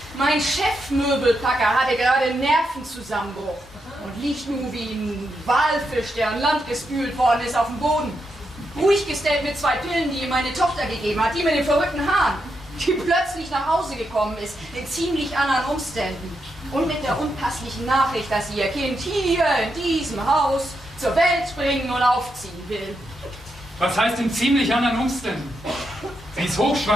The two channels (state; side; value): normal; both; correlation 0.83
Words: Mein Chefmöbelpacker hatte gerade einen Nervenzusammenbruch und liegt nun wie ein Walfisch, der an Land gespült worden ist, auf dem Boden. Ruhig gestellt mit 2 Pillen, die ihm meine Tochter gegeben hat, die mit den verrückten Haaren, die plötzlich nach Hause gekommen ist, in ziemlich anderen Umständen. Und mit der unpasslichen Nachricht, dass sie ihr Kind hier in diesem Haus zur Welt bringen und aufziehen will. Was heißt in ziemlich anderen Umständen? Sie ist